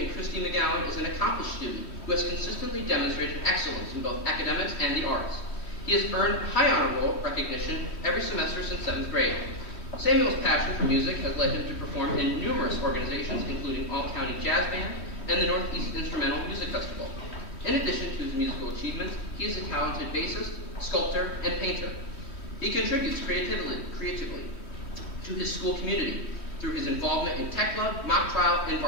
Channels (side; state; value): right; late; 3.1 ms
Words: and Christy McGowan, is an accomplished student who has consistently demonstrated excellence in both academics and the arts. He has earned high honor roll recognition every semester since 7th grade. Samuel's passion for music has led him to perform in numerous organizations, including All-County Jazz Band and the Northeast Instrumental Music Festival. In addition to his musical achievements, he is a talented bassist, sculptor, and painter. He contributes creatively to his school community through his involvement in tech club, mock trial, and